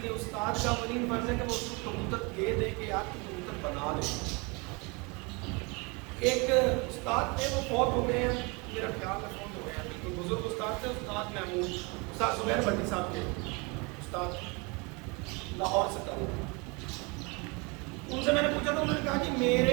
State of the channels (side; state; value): left; quieter; 29.1 dB